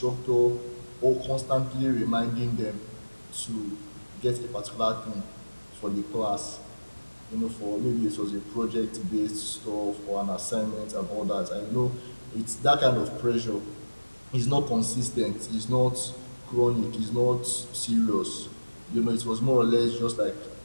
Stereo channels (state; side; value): inverted; both; correlation -1.00